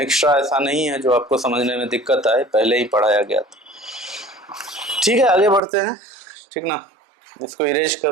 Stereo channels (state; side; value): drops out; left; at 5.6 s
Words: ऐसा नहीं है जो आपको समझने में दिक्कत आए, पहले ही पढ़ाया गया था। ठीक है, आगे बढ़ते हैं, ठीक ना। इसको इरेज